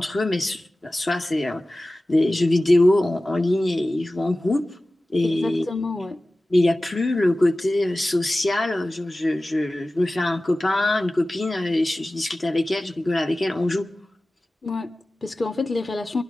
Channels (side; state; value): both; normal; correlation 0.96